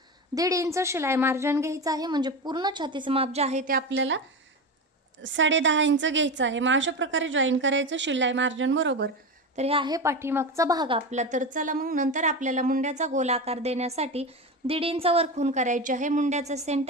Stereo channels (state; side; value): normal; both; correlation 0.21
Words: 1.5 इंच शिलाई मार्जिन घ्यायचं आहे, म्हणजे पूर्ण छातीचं माप जे आहे ते आपल्याला 10.5 इंच घ्यायचं आहे. मग अशा प्रकारे जॉईन करायचं शिलाई मार्जिन बरोबर. तर हे आहे पाठीमागचा भाग आपला. तर चला मग नंतर आपल्याला मुंड्याचा गोल आकार देण्यासाठी 1.5 इंच वर खूण करायची आहे. मुंड्याचा